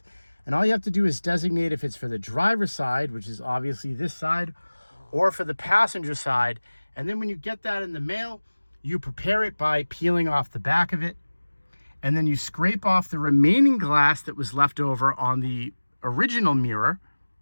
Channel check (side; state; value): both; inverted; correlation -1.00